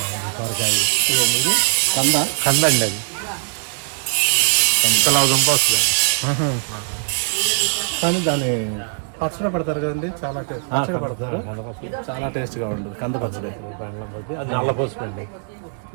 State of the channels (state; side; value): silent; left; 65 dB below the other